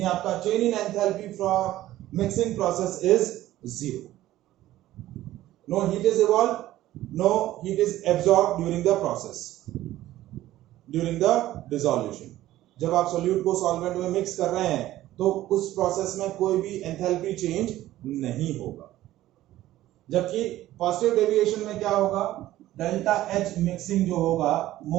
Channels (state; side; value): quieter; left; 14.8 dB